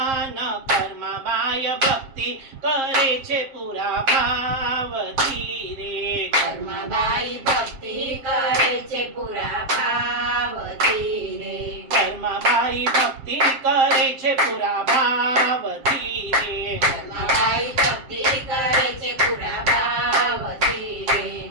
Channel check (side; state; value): left; late; 7.5 ms